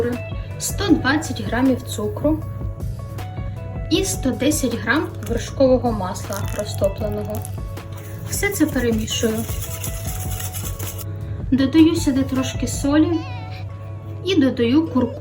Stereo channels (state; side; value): identical; both; correlation 1.00